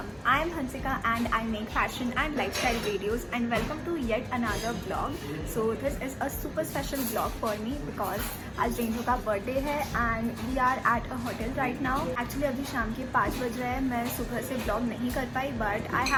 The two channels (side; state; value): both; identical; correlation 1.00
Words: I am Hansika and I make fashion and lifestyle videos and welcome to yet another vlog. So this is a super special vlog for me because आज रेंजो का बर्थडे है and we are at a hotel right now. Actually अभी शाम के 5 बज रहे हैं, मैं सुबह से vlog नहीं कर पाई but I